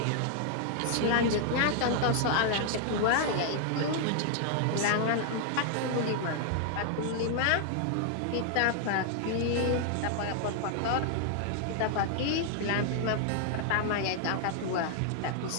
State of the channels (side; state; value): both; different; correlation 0.00